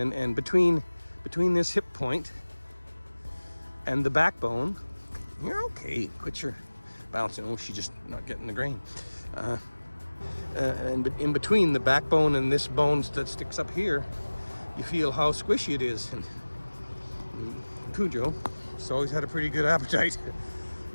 between this hip point and the backbone, you're okay. Quit your bouncing. Oh, she's just not getting the grain. And in between the backbone and this bone that sticks up here, you feel how squishy it is. And Cujo, he's always had a pretty good appetite,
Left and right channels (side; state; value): both; inverted; correlation -1.00